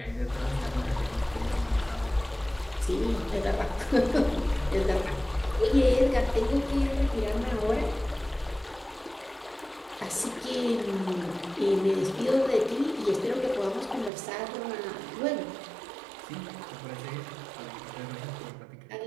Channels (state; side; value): drops out; left; at 14.1 s